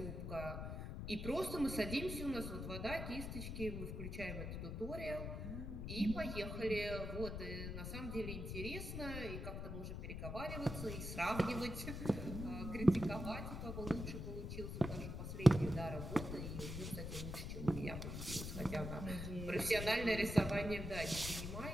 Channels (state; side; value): noise; left; rumble, 5 dB below the sound